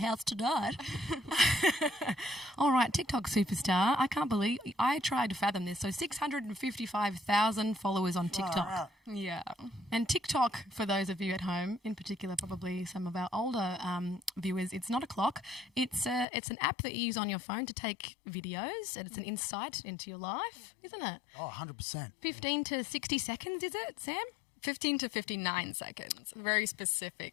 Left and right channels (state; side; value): drops out; right; at 16.2 s